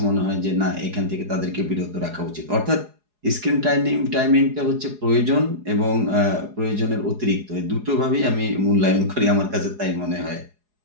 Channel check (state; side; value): late; left; 4.8 ms